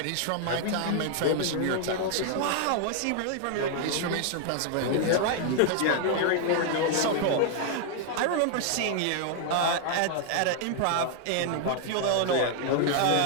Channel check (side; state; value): both; different; correlation 0.00